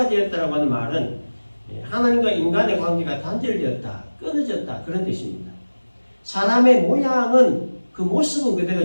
되었다라고 하는 말은 하나님과 인간의 관계가 단절되었다, 끊어졌다 그런 뜻입니다. 사람의 모양은 그 모습은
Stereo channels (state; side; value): inverted; both; correlation -1.00